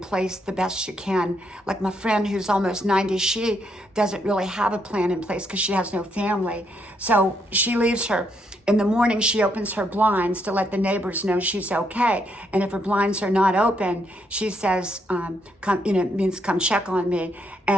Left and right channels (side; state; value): both; normal; correlation 0.76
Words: the best you can. Like my friend who's almost 90, she doesn't really have a plan in place because she has no family. So she leaves in the morning, she opens her blinds to let the neighbors know she's okay. And if her blinds are not open, she says, it means come check on me.